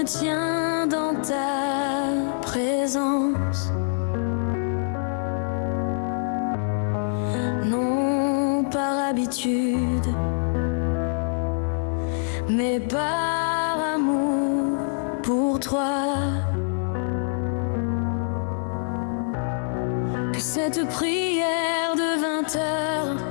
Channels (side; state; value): right; silent; 62 dB below the other